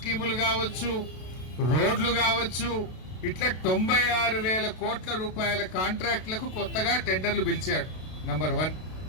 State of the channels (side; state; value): right; late; 32 ms